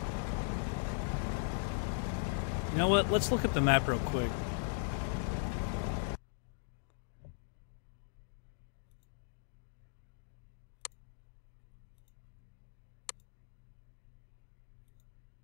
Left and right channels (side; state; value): right; silent; digital silence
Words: You know what? Let's look at the map real quick.